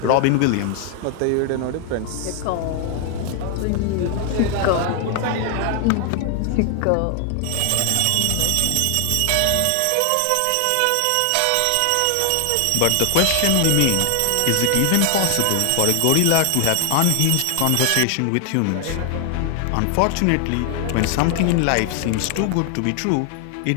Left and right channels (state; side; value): different; both; correlation 0.00